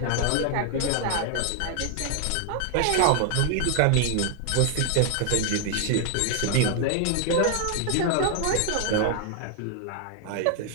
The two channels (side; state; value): both; different; correlation 0.00